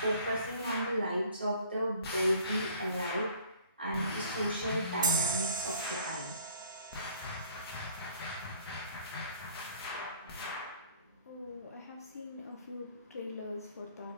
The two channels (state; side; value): inverted; both; correlation -0.55